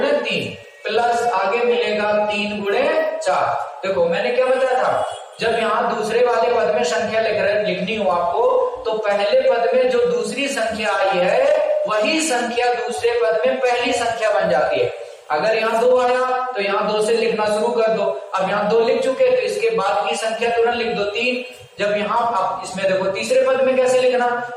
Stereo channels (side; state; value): both; identical; correlation 1.00